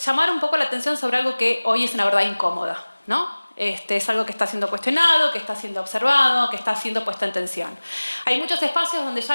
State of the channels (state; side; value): inverted; both; correlation -1.00